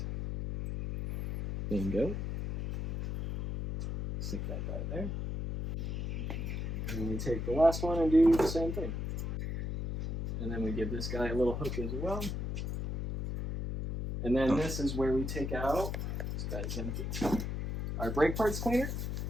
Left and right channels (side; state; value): left; noise; hum, 3 dB below the sound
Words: Bingo. Stick that guy there. And then we take the last one and do the same thing. And then we give this guy a little hook as well. And then this is where we take out, this guy's empty, our brake parts cleaner.